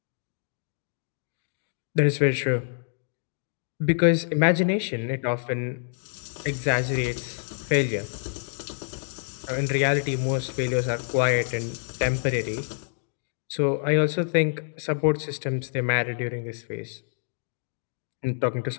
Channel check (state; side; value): silent; right; digital silence